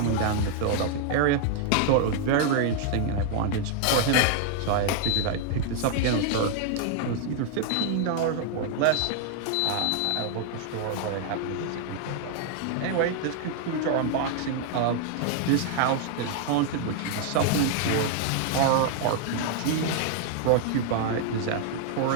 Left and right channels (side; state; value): both; different; correlation 0.00